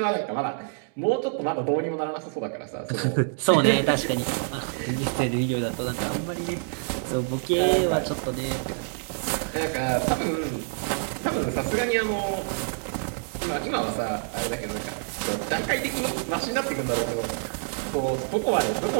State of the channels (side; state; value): left; silent; digital silence